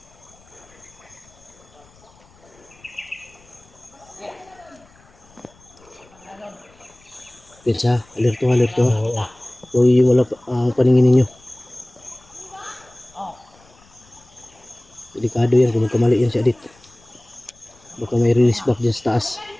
Pensa, alerto, alerto. Uy, wala pa ang paningin ninyo. Delikado yan kung magkamali yan si Adit. Baka may release back dyan sa taas.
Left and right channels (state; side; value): noise; left; rumble, 28 dB below the sound